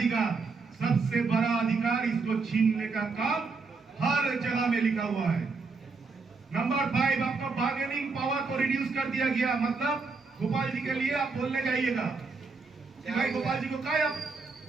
सबसे बड़ा अधिकार, इसको छीनने का काम हर जगह में लिखा हुआ है। नंबर 5, आपका बार्गेनिंग पावर को रिड्यूस कर दिया गया, मतलब गोपाल जी के लिए आप बोलने जाइएगा कि भाई गोपाल जी को क्या आप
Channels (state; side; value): quieter; left; 4.3 dB